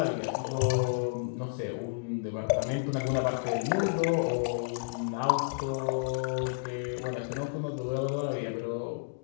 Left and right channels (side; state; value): right; quieter; 37.2 dB